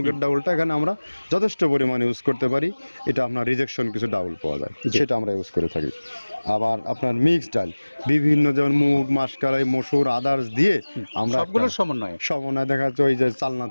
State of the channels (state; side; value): inverted; both; correlation -1.00